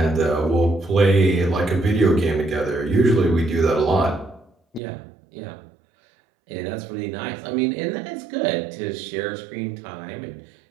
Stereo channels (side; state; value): left; drops out; at 4.8 s